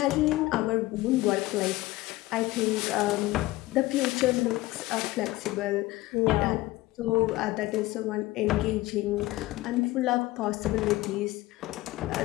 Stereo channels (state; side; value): quieter; right; 18.5 dB